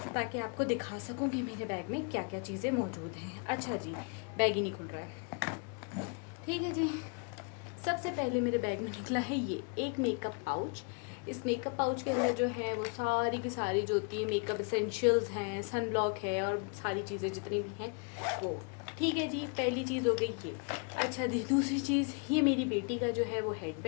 ताकि आपको दिखा सकूँ कि मेरे बैग में क्या क्या चीज़ें मौजूद हैं। अच्छा जी, बैग ही नहीं खुल रहा है। ठीक है जी। सबसे पहले मेरे बैग में निकला है ये एक मेकअप पाउच। इस मेकअप पाउच के अंदर जो है वो सारी की सारी जो होती है मेकअप एसेंशियल्स हैं, सन ब्लॉक है और सारी चीज़ें जितनी भी हैं वो। ठीक है जी, पहली चीज़ हो गई ये। अच्छा जी, दूसरी चीज़, ये मेरी बेटी का जो है वो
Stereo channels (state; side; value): quieter; right; 36.6 dB